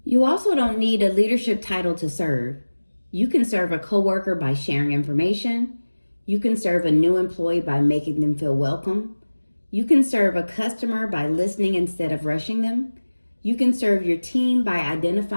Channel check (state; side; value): inverted; both; correlation -1.00